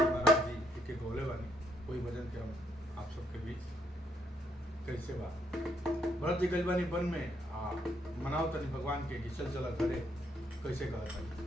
महाराज जी के गौले बानी। कोई भजन के हम आप सबके बीच कैसे बा। भरत जी गइल बानी वन में मनाओ तनी भगवान के कि चल चला घरे। कैसे कहता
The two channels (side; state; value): both; normal; correlation 0.74